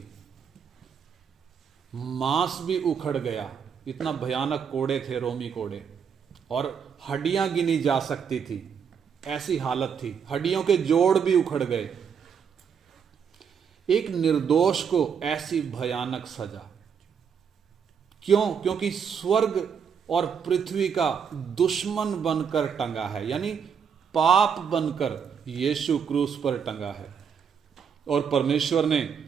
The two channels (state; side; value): quieter; left; 7.0 dB